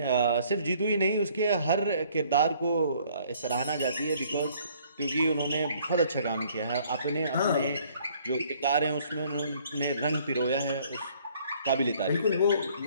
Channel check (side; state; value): both; inverted; correlation -0.60